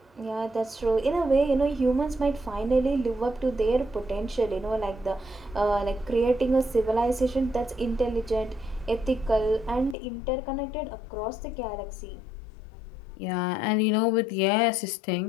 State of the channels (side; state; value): right; drops out; at 10.0 s